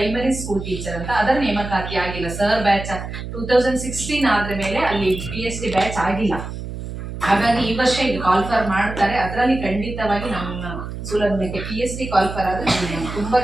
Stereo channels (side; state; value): right; noise; hum, 8 dB below the sound